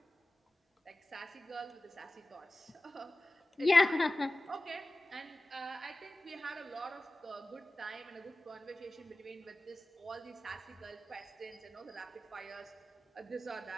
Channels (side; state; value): both; normal; correlation 0.97